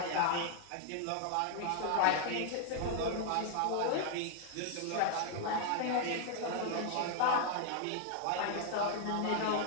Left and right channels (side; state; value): both; different; correlation 0.00